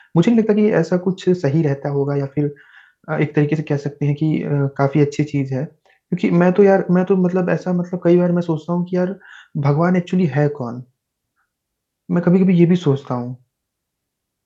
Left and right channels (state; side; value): identical; both; correlation 1.00